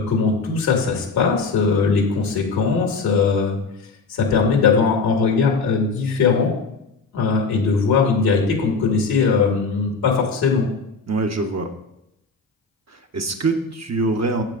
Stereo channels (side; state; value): right; quieter; 3.9 dB